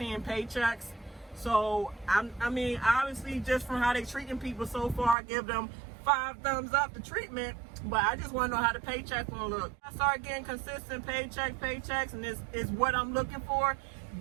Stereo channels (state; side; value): drops out; left; at 5.2 s